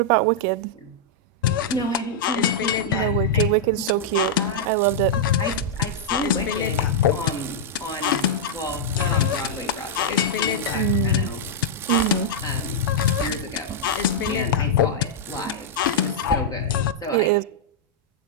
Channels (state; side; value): normal; both; correlation -0.06